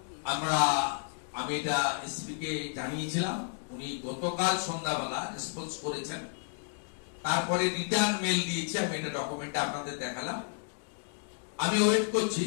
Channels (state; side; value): silent; right; 56 dB below the other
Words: আমি এটা এসপি কে জানিয়েছিলাম, উনি গতকাল সন্ধ্যাবেলা রেসপন্স করেছেন। তারপরে রিটার্ন মেল দিয়েছে, আমি এটা ডকুমেন্টে আপনাদের দেখালাম। আমি ওয়েট করছি,